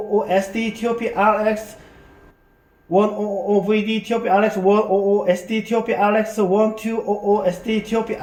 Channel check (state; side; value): identical; both; correlation 1.00